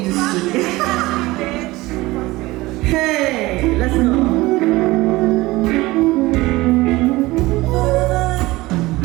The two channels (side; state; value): left; quieter; 19.9 dB